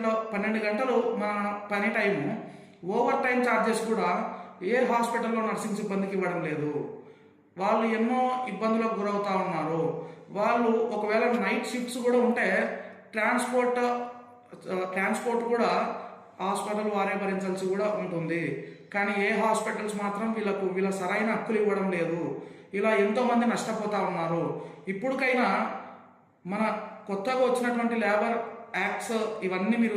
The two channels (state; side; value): identical; both; correlation 1.00